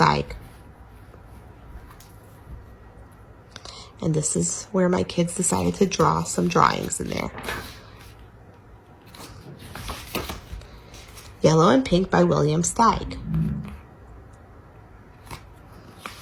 And this is where my kids decided to draw some drawings in there. Yellow and Pink by William Steig.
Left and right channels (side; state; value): both; identical; correlation 1.00